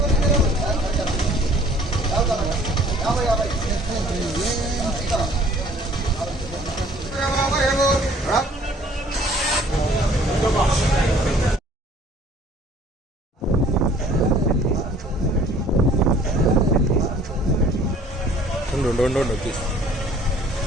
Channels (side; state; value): both; normal; correlation 0.55